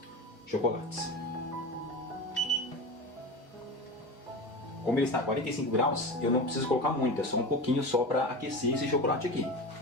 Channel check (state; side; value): normal; both; correlation 0.28